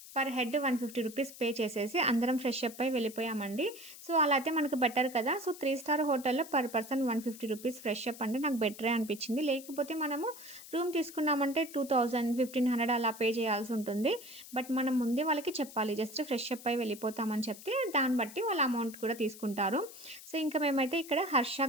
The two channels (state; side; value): noise; left; hiss, 16 dB below the sound